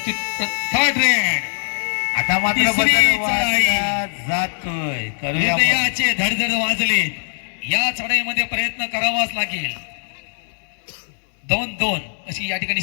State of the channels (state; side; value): silent; right; digital silence